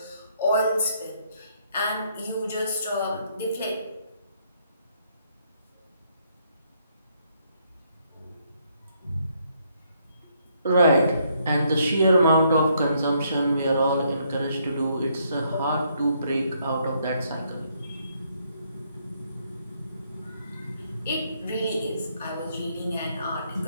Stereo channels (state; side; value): inverted; both; correlation -0.71